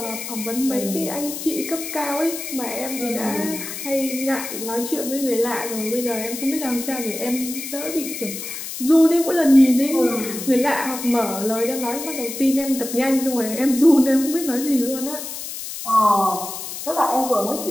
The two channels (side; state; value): left; noise; hiss, 8 dB below the sound